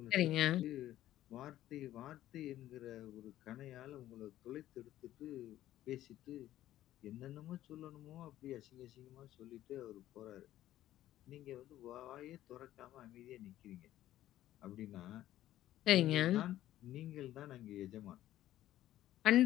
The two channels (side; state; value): right; quieter; 13.6 dB